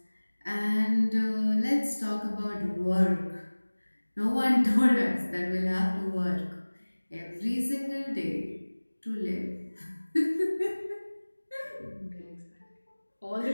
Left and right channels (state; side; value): inverted; both; correlation -1.00